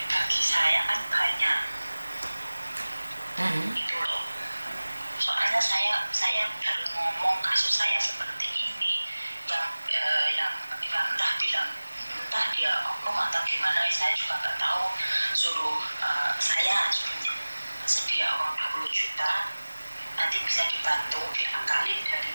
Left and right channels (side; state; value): both; inverted; correlation -1.00